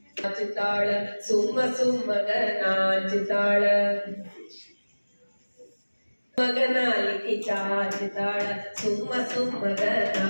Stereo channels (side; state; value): both; inverted; correlation -1.00